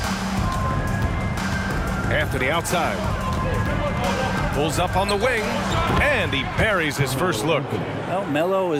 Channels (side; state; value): both; identical; correlation 1.00